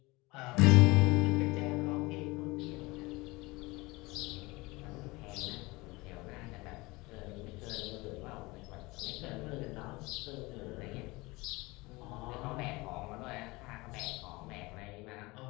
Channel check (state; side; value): quieter; right; 23.1 dB